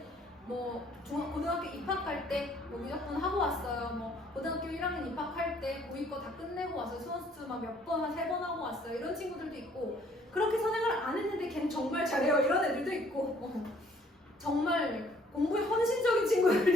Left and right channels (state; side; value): normal; both; correlation 0.61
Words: 뭐 고등학교 입학할 때 뭐 무조건 하고 왔어요. 뭐 고등학교 1학년 입학할 때 고이 거 다 끝내고 왔어요. 수원수 막 몇 번, 한 3번 하고 왔어요. 이런 친구들도 있고 그렇게 선행을 안 했는데 걔는 정말 잘해요. 이런 애들도 있고 정말 공부에 헌신적인